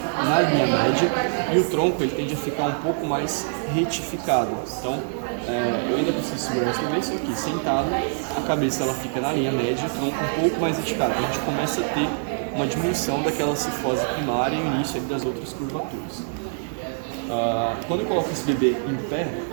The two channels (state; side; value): silent; left; 60 dB below the other